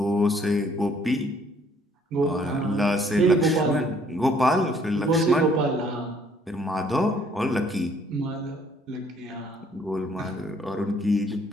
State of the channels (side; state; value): both; normal; correlation 0.62